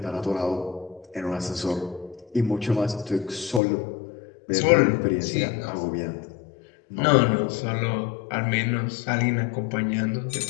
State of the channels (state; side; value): drops out; right; at 3.6 s